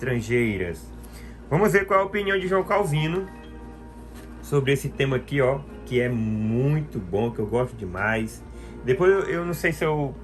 Vamos ver qual é a opinião de João Calvino sobre esse tema aqui, ó, que é muito bom, que eu gosto demais. Depois eu não sei se eu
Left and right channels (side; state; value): both; identical; correlation 1.00